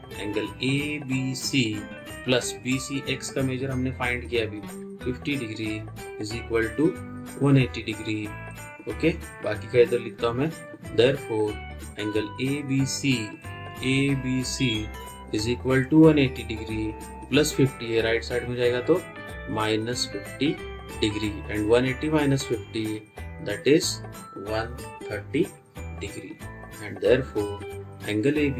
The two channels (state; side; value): identical; both; correlation 1.00